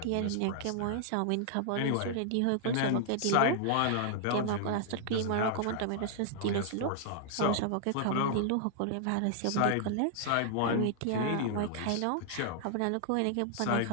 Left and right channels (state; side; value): different; both; correlation -0.01